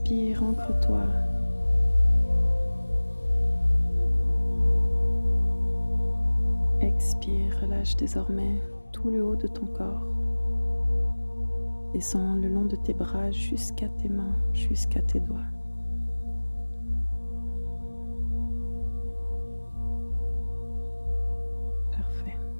ancre-toi. Expire, relâche désormais tout le haut de ton corps. Descends le long de tes bras jusqu'à tes mains, jusqu'à tes doigts.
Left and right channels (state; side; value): inverted; both; correlation -1.00